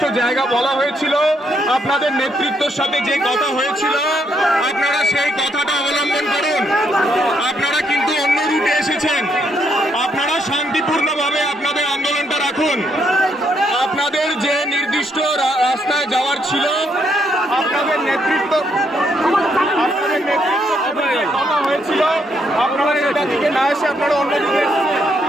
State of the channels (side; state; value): both; normal; correlation 0.74